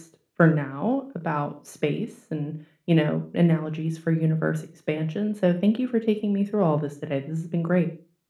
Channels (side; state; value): both; identical; correlation 1.00